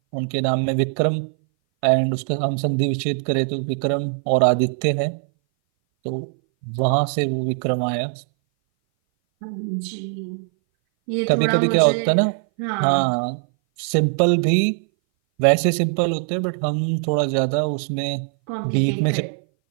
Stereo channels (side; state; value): left; silent; 59 dB below the other